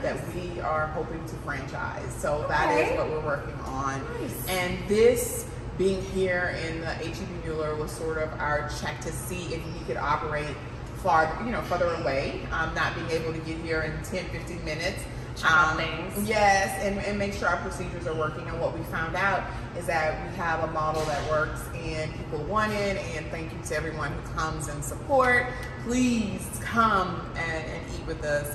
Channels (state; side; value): identical; both; correlation 1.00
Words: that we are hoping to franchise. So that is what we're working on. Nice. And this being here in the H-E-B Mueller was sort of our check to see if we could operate further away, not being able to get here in 10, 15 minutes. Things. Yes, and make sure our procedures are working. And what we found out is that we have a model that works and people want it. And thank you to everyone who comes and support. Please come and eat with us.